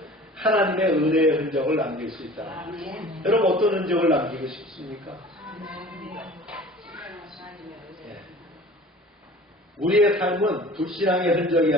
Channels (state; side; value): normal; both; correlation 0.44